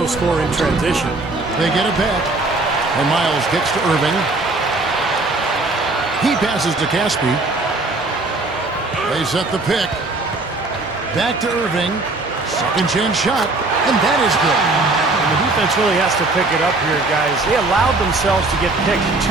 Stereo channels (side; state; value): left; quieter; 3.2 dB